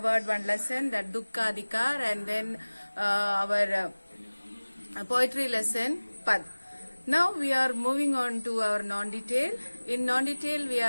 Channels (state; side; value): inverted; both; correlation -1.00